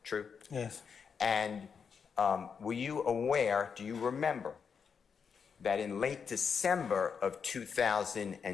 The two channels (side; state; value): right; quieter; 6.3 dB